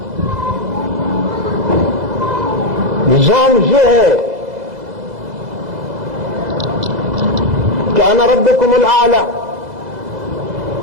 نظام یہ ہے کہ انا ربکم الاعلی،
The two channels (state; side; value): late; left; 2.0 ms